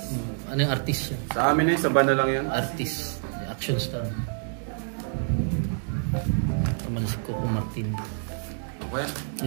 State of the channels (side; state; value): left; silent; 60 dB below the other